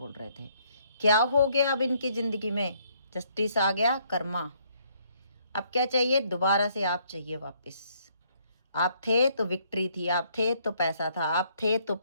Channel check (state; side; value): inverted; both; correlation -0.68